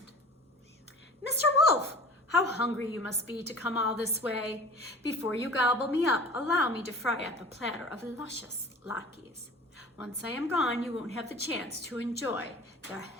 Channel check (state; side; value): normal; both; correlation 0.42